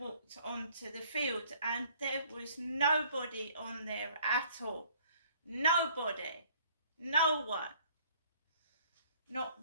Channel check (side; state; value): both; inverted; correlation -0.58